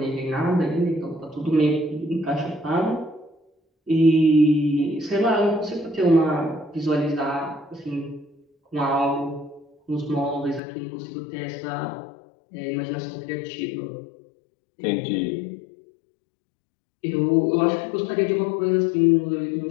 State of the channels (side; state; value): right; drops out; at 10.6 s